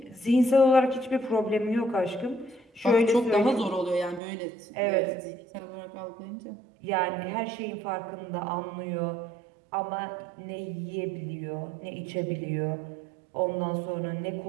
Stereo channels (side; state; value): left; drops out; at 4.2 s